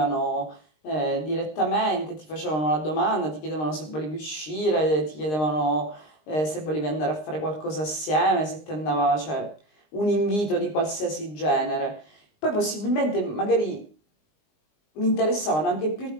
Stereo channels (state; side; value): late; right; 20 ms